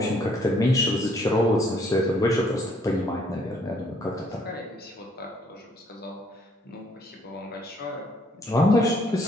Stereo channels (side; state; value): both; normal; correlation 0.65